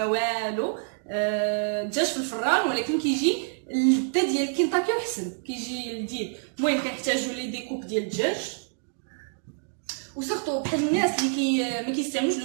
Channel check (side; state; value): left; silent; 60 dB below the other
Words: والو. الدجاج في الفران ولكن كيجي اللذه ديال كينتاكي وحسن، كيجي لذيذ. المهم كنحتاجوا لي ديكوب ديال الدجاج، وسورتو بحال الناس اللي ما كيستعملوش